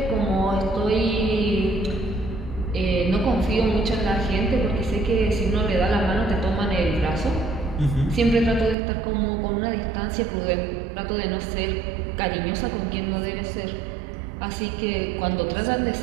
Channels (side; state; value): left; drops out; at 8.8 s